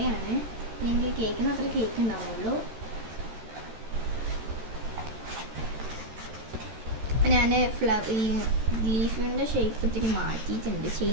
എനിക്ക് കേൾക്കുന്ന അത്ര കേക്ക് ഉണ്ടാവുള്ളൂ. ഞാൻ ഈ ലീഫിൻ്റെ ഷേപ്പ് ഇത്തിരി മാറ്റിയിട്ടുണ്ട്,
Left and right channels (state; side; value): late; left; 13 ms